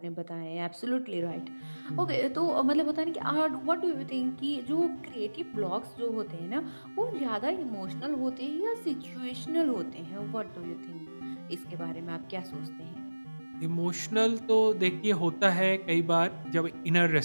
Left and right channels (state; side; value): inverted; both; correlation -1.00